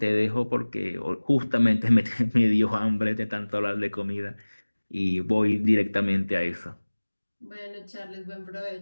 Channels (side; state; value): both; inverted; correlation -1.00